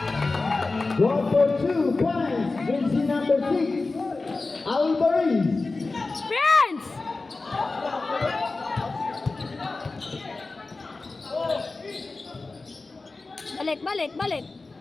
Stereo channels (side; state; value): right; quieter; 3.6 dB